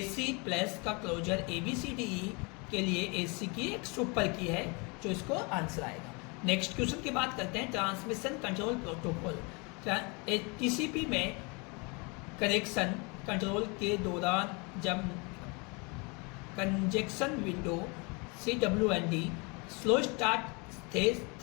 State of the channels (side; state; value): right; quieter; 30.3 dB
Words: प्लस का क्लोजर ABCDE के लिए AC की एक सुपर की है, जो इसको आंसर आएगा। नेक्स्ट क्वेश्चन की बात करते हैं ट्रांसमिशन कंट्रोल प्रोटोकॉल। TCP में कनेक्शन कंट्रोल के दौरान जब conjunction window CWND slow start